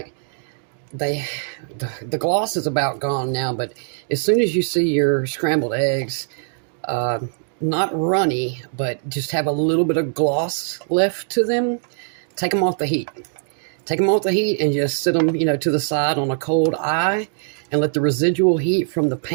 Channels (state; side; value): silent; left; digital silence